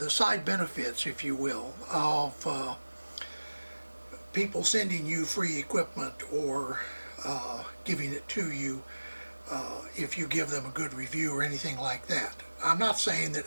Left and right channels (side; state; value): both; inverted; correlation -1.00